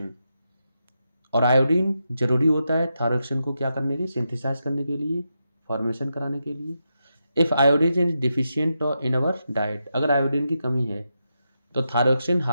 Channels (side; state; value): both; inverted; correlation -0.86